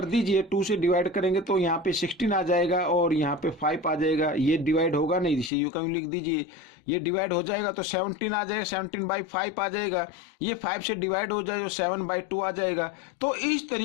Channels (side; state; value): right; drops out; at 5.5 s